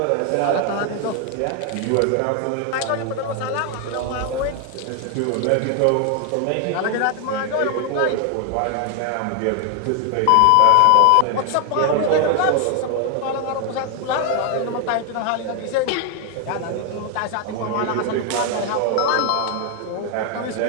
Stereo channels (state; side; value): different; both; correlation 0.00